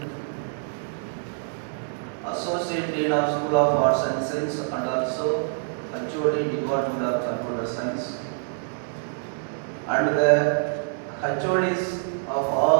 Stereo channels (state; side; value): silent; left; digital silence